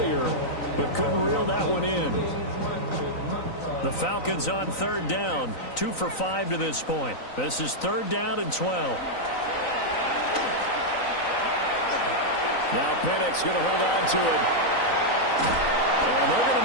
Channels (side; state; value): right; late; 3.9 ms